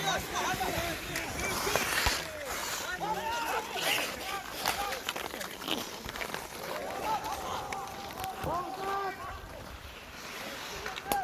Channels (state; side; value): identical; both; correlation 1.00